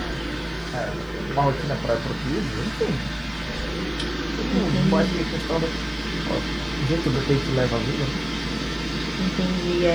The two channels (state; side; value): noise; left; hiss, 30 dB below the sound